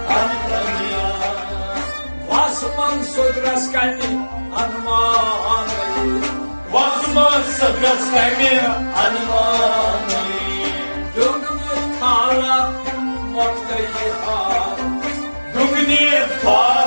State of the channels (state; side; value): inverted; both; correlation -1.00